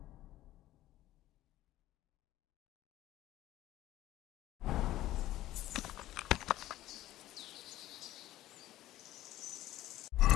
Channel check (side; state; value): right; quieter; 14.9 dB